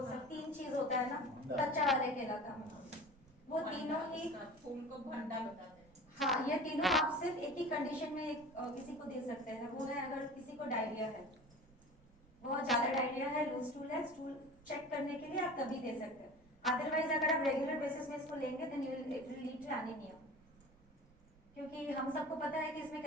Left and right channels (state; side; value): noise; right; rumble, 26 dB below the sound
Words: सब 3 चीज होता है ना, कच्चा वाले केला का, वो तीनों ही फूल को भंडा बताते हैं। हाँ, ये तीनों आप सिर्फ एक ही कंडीशन में किसी को दे सकते हैं, वो है अगर किसी को डायरिया है, बहुत ज्यादा डायरिया है, लूज स्टूल है, स्टूल चेक करने के लिए आप तभी दे सकते हैं। अदरवाइज अगर आप रेगुलर बेसिस में इसको लेंगे then it will lead to anaemia, क्योंकि हम सबको पता है कि इसमें